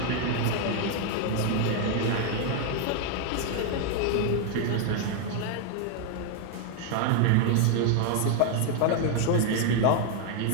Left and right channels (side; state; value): both; different; correlation 0.00